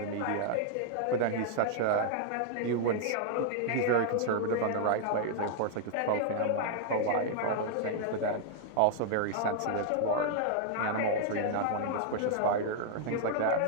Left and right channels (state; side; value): different; both; correlation 0.00